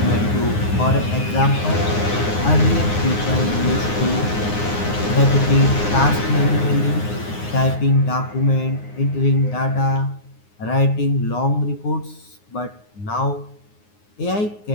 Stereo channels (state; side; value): late; right; 9.6 ms